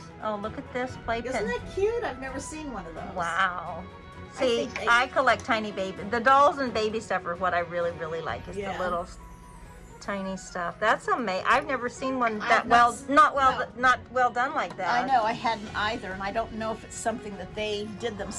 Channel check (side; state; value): both; identical; correlation 1.00